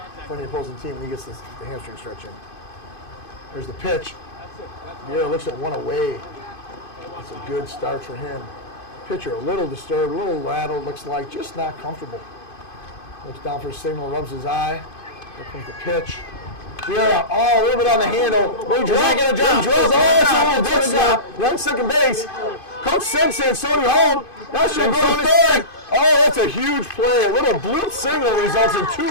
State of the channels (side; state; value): right; late; 2.5 ms